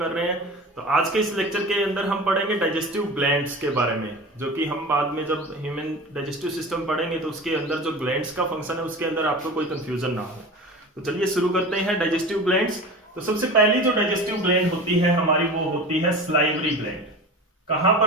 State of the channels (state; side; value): normal; both; correlation 0.34